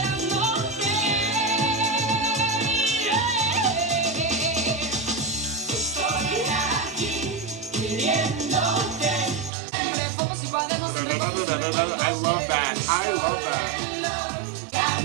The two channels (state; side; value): drops out; left; at 9.5 s